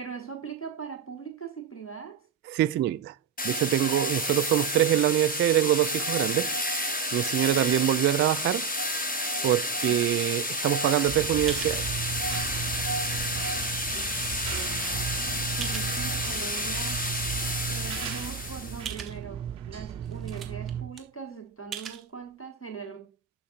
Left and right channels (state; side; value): quieter; left; 5.5 dB